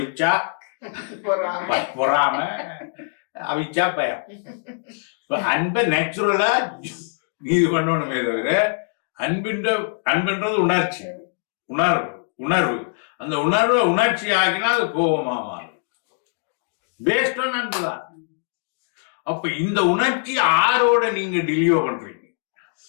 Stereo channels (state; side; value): silent; right; digital silence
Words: பொறாம, அவிச்சா பயம். அன்பை நேச்சுரலா இது பண்ணணுமே தவிர அன்புன்றது உணர்ச்சி, உணர்வு. அந்த உணர்வை உணர்ச்சி ஆகினா அது கோபமா மாறும். பேஸ்ட் ஆன் அன்புதான். அப்ப இந்த உணர்ச்சி ஆரோட நீங்க டெலிவோ பண்றீங்க,